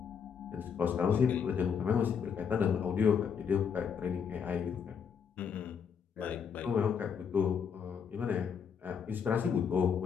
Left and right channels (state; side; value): quieter; right; 6.9 dB